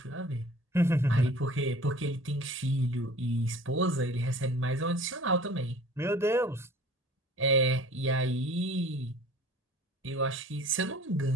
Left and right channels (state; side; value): normal; both; correlation 0.46